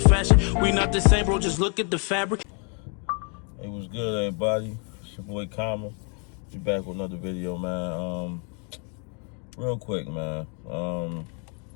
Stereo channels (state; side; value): quieter; right; 37.7 dB